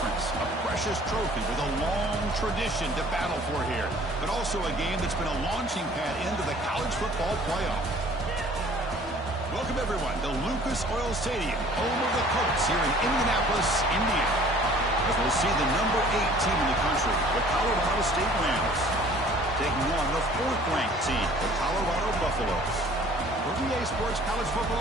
A precious trophy with a long tradition to battle for here. But also a game that's been a launching pad into the college football playoff. Welcome, everyone, to Lucas Oil Stadium, home of the Colts here in Indianapolis, Indiana. As we'll see the number 8 team in the country, the Colorado State Rams, taking on the 4th-ranked team, the Colorado Buffaloes. For VA Sports College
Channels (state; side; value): normal; both; correlation 0.52